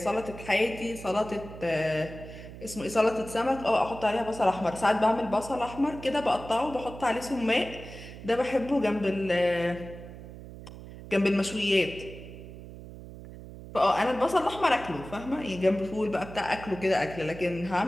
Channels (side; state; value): right; noise; hum, 14 dB below the sound